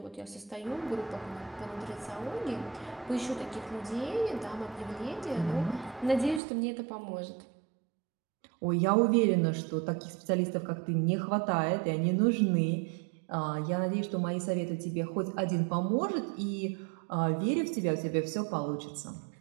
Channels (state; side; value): drops out; left; at 6.4 s